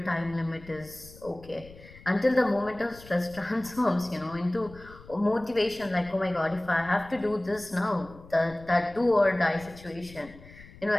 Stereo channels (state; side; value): noise; left; rumble, 20 dB below the sound